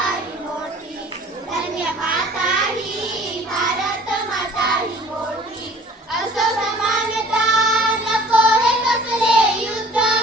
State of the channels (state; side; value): normal; both; correlation 0.50